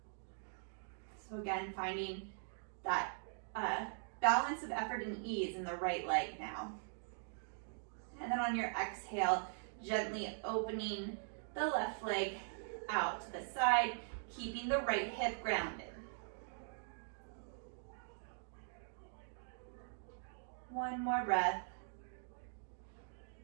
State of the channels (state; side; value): silent; left; digital silence